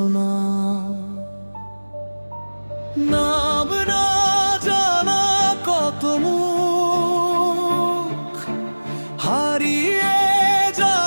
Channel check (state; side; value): inverted; both; correlation -1.00